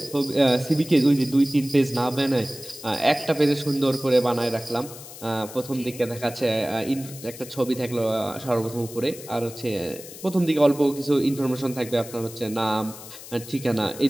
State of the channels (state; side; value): noise; left; hiss, 15 dB below the sound